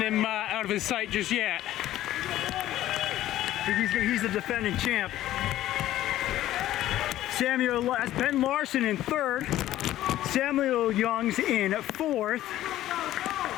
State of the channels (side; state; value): right; quieter; 13.9 dB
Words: him out of his sight just yet. He's the defending champ. That's Ben Larson in third. Samuel Youngs in fourth.